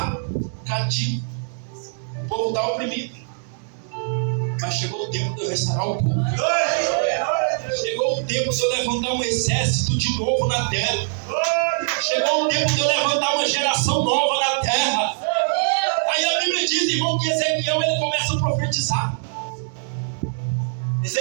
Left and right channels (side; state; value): left; silent; digital silence